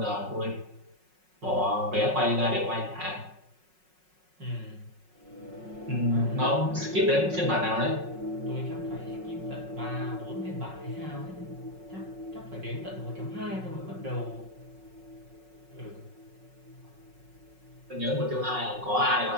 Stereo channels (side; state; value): left; late; 5.4 ms